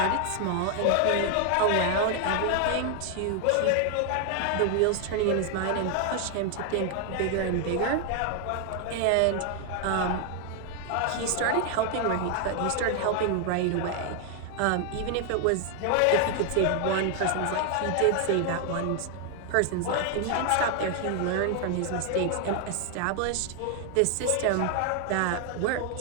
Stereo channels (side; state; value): both; different; correlation 0.00